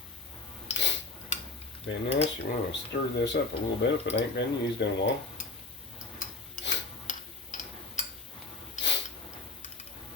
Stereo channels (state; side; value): quieter; right; 3.7 dB